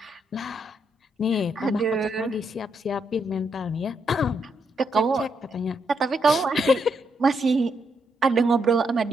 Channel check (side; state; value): both; normal; correlation 0.78